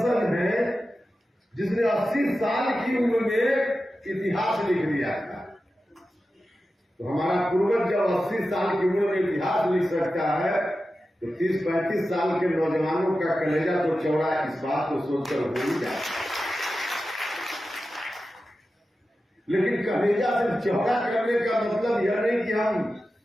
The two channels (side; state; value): both; normal; correlation 0.93